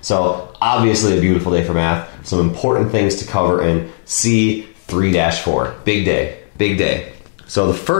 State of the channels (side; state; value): right; silent; digital silence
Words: So obviously a beautiful day for math, some important things to cover in C3-4. Big day, big day. So the